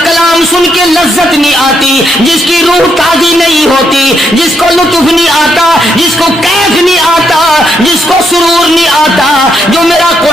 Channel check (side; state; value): both; normal; correlation 0.77